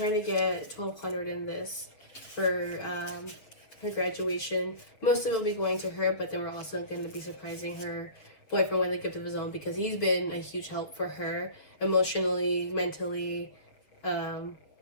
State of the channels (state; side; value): late; right; 7.0 ms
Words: to get 1,200 in this for her graduation. Most of it will be going to her, but then we're also going to be surprising her boyfriend with a gift of his own, because he's been a huge help for her emotionally, mentally,